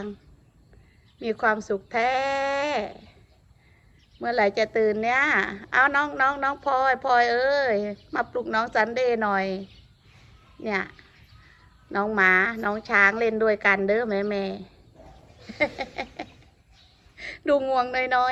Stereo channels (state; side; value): identical; both; correlation 1.00